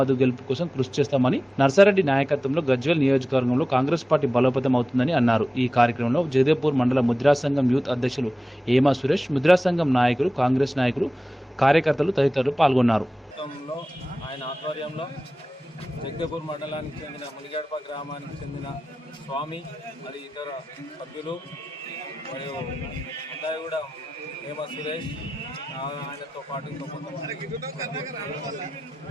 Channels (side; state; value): both; normal; correlation 0.95